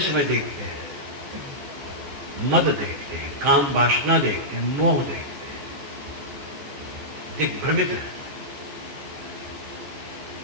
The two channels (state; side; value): late; left; 14 ms